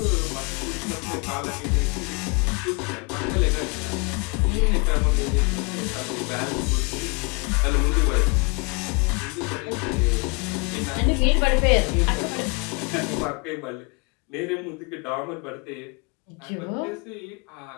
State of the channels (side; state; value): right; quieter; 32.6 dB